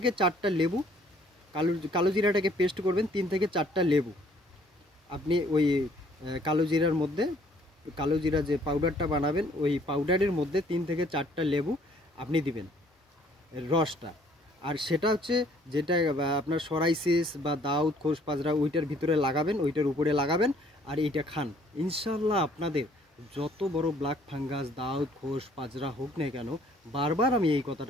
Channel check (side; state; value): both; normal; correlation 0.61